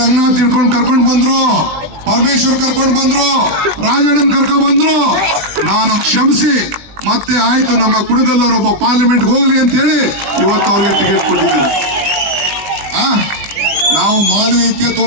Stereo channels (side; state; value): left; late; 20 ms